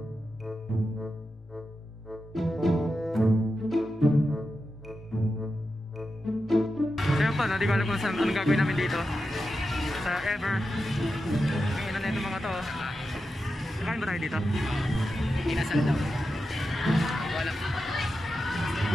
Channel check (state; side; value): normal; both; correlation 0.90